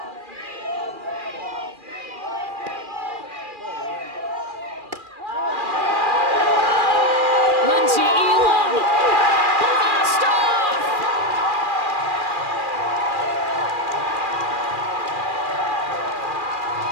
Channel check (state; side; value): late; left; 2.4 ms